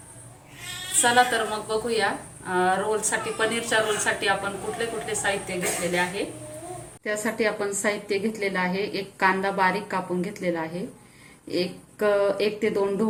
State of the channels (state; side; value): identical; both; correlation 1.00